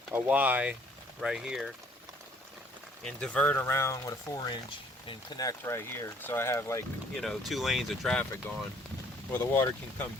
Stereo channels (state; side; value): normal; both; correlation 0.59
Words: Y right here and divert around with a 4-inch and connect right here, so I have, like, you know, 2 lanes of traffic going where the water can come